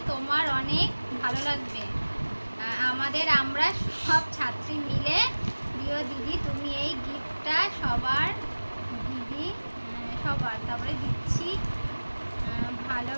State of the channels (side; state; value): both; inverted; correlation -1.00